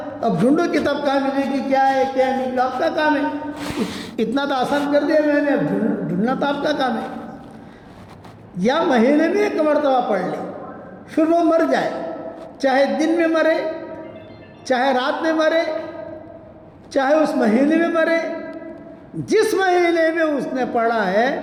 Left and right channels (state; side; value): identical; both; correlation 1.00